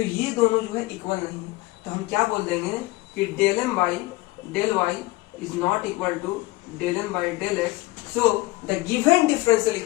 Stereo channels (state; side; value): quieter; right; 20.5 dB